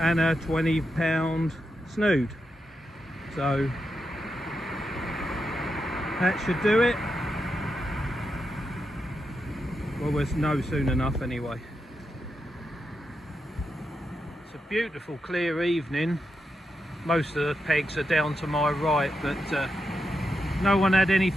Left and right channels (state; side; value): normal; both; correlation 0.86